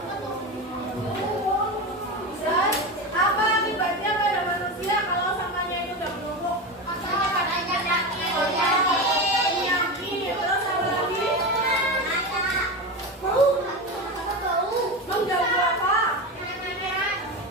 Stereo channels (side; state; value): both; normal; correlation 0.21